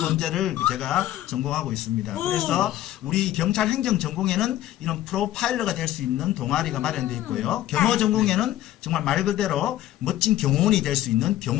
제가 전공하고 있습니다. 그래서 우리 경찰 행정 전공에는 이런 프로파일러가 될 수 있는 동아리가 마련되어 있고요. 경호 전공에는 정말 말 그대로 멋진 경호원이 될 수 있는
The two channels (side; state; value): right; quieter; 13.9 dB